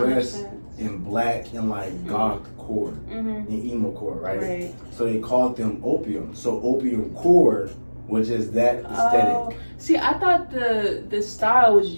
in black and like goth core and emo core, right? So they called them opium. So opium core was just that aesthetic. See, I thought the style was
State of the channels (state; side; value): inverted; both; correlation -1.00